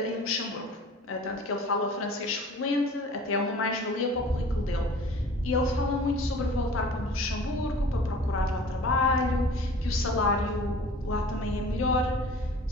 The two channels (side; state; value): both; normal; correlation 0.45